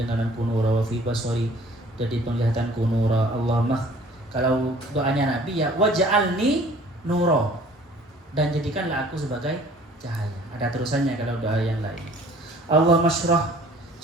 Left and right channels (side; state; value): both; normal; correlation 0.52